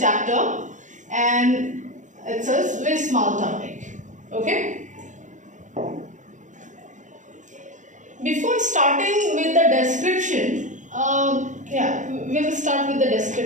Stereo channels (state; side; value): late; left; 0.36 ms